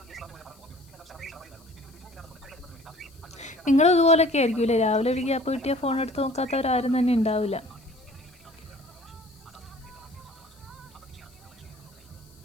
നിങ്ങളും ഇതുപോലൊക്കെ ആയിരിക്കുമല്ലേ? രാവിലെ ഒരു ഗ്യാപ്പ് കിട്ടിയ ഫോൺ എടുത്ത് നോക്കാത്തവരാരും തന്നെ ഉണ്ടാവില്ല.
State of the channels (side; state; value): left; noise; hiss, 28 dB below the sound